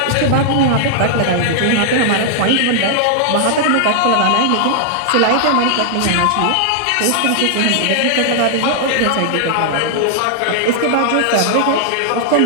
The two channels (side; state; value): both; different; correlation -0.01